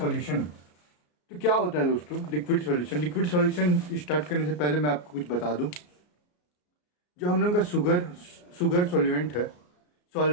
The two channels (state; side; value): late; right; 34 ms